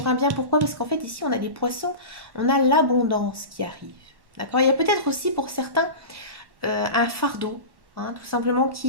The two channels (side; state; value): left; late; 1.1 ms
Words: un bien, pourquoi? Parce qu'en fait, ici, on a des poissons, on a l'abondance qui arrive. D'accord? Il y a peut-être aussi pour certains un fardeau, hein, tout simplement,